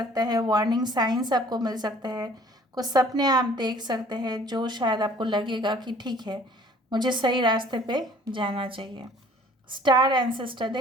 है, वार्निंग साइंस आपको मिल सकते हैं, कुछ सपने आप देख सकते हैं जो शायद आपको लगेगा कि ठीक है, मुझे सही रास्ते पे जाना चाहिए। स्टार एंसेस्टर,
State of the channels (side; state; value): both; normal; correlation 0.54